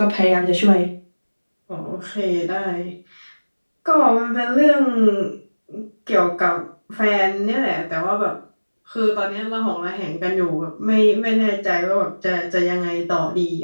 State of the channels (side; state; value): both; inverted; correlation -1.00